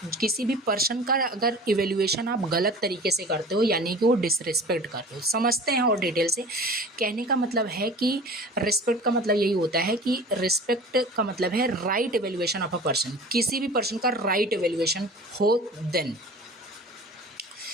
किसी भी पर्सन का अगर इवेल्युएशन आप गलत तरीके से करते हो, यानी कि वो डिसरिस्पेक्ट करते हो। समझते हैं और डिटेल से। कहने का मतलब है कि रिस्पेक्ट का मतलब यही होता है कि रिस्पेक्ट का मतलब है right evaluation of a person, किसी भी पर्सन का राइट इवेल्युएशन हो। देन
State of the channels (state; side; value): normal; both; correlation 0.41